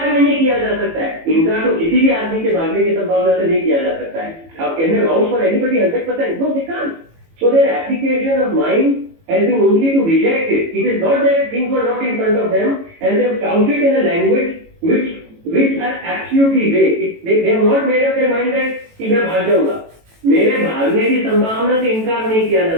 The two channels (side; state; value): left; late; 18 ms